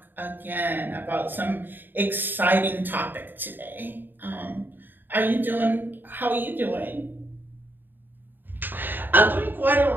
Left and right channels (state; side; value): late; left; 0.093 ms